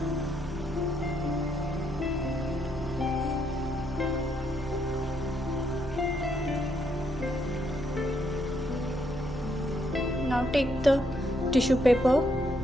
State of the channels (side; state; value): right; noise; hum, 15 dB below the sound